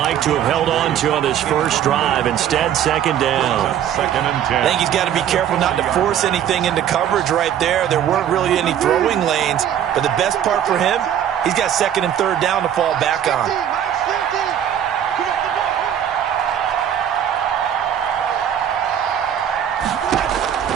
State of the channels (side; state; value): left; quieter; 9.9 dB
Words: to have held on to on this first drive. Instead, 2nd down. 2nd and 10. I think he's got to be careful not to force anything into coverage right there. There weren't really any throwing lanes. But the best part for him, he's got 2nd and 3rd down to fall back on.